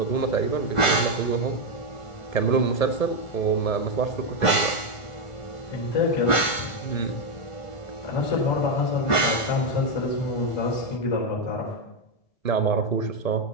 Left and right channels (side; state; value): right; late; 1.4 ms